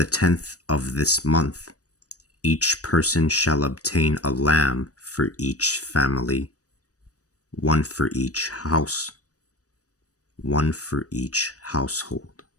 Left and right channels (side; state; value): right; late; 0.66 ms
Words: 10th of this month, each person shall obtain a lamb for each family, one for each house, one for each household.